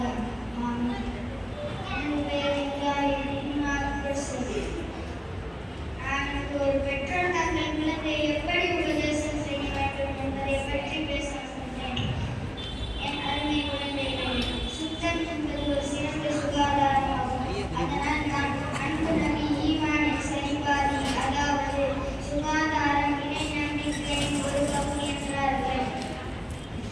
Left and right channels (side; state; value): both; identical; correlation 1.00